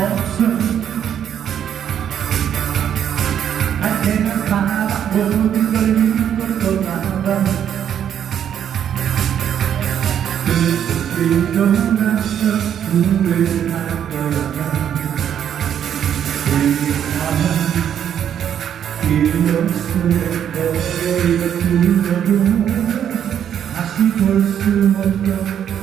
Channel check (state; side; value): quieter; left; 9.3 dB